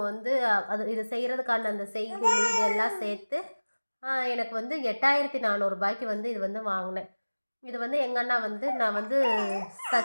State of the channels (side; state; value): both; inverted; correlation -1.00